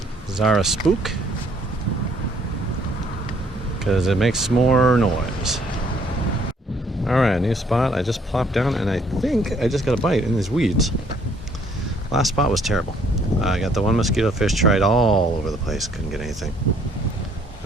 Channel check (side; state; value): both; normal; correlation 0.63